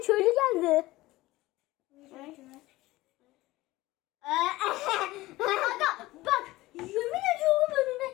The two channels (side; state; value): right; quieter; 18.5 dB